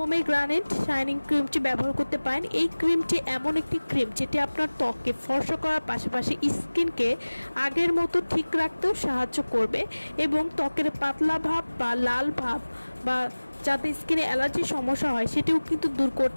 শাইনিং ক্রিমটি ব্যবহার করতে পারেন। এই ক্রিমটি এমন একটি ক্রিম যেটি আপনার ত্বককে ফর্সা করার পাশাপাশি স্কিনকে আগের মতো ঠিক রাখতেও সাহায্য করবে এবং ত্বকের পাতলা ভাব বা লাল ভাব বা যাতে স্কিনে অ্যালার্জির সমস্যা হয় সেটিও কিন্তু দূর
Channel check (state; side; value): inverted; both; correlation -1.00